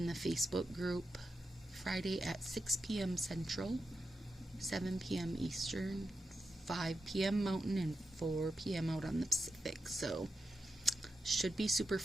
the Facebook group Friday at 6 p.m. Central, 7 p.m. Eastern, 5 p.m. Mountain, and 4 p.m. out on the Pacific. So should be super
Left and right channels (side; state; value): both; normal; correlation 0.88